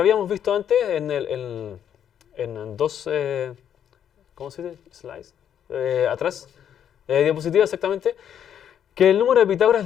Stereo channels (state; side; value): quieter; right; 9.3 dB